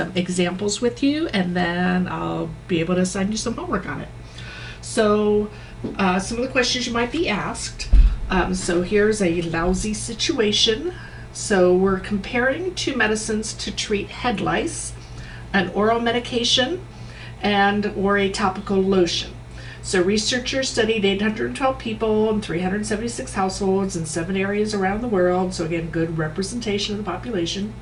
examples with you, and then I'll be able to assign you some homework on it. So some of the questions you might be asked. So here's a lousy situation. So we're comparing two medicines to treat head lice, an oral medication, and or a topical lotion. So researchers studied 812 people in 376 households in 7 areas around the world. So again, good representation of the population.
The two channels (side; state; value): both; identical; correlation 1.00